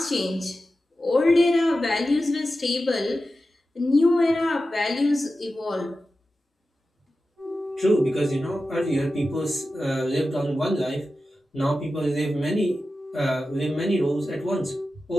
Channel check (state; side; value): normal; both; correlation 0.93